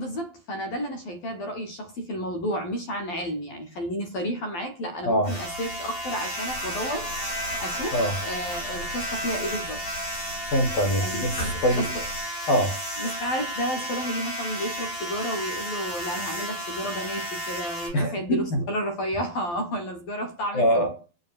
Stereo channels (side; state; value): right; late; 12 ms